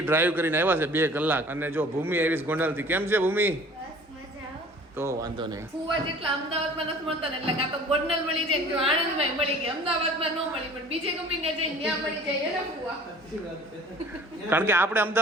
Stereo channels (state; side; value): normal; both; correlation 0.48